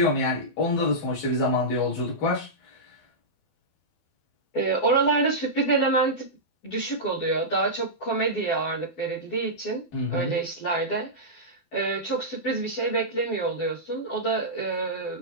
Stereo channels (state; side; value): late; right; 12 ms